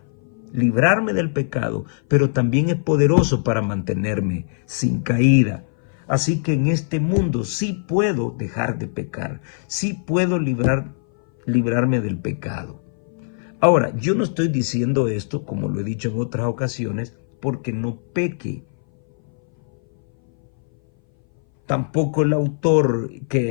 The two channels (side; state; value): right; silent; 60 dB below the other